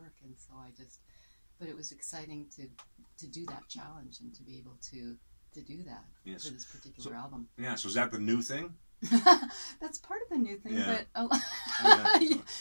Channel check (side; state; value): both; inverted; correlation -1.00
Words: And so but it was exciting to do that challenge and to be able to do that for this particular album. Yeah, so is that the new thing? That's part of the new thing, but